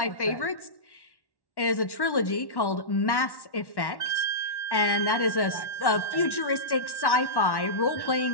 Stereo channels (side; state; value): right; late; 1.1 ms